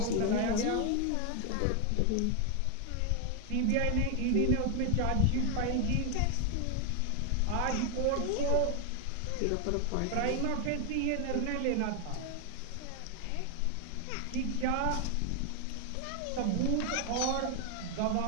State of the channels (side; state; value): both; different; correlation 0.01